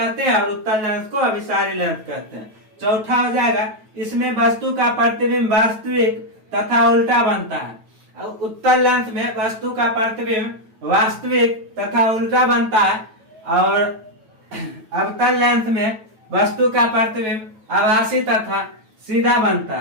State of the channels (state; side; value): late; left; 9.2 ms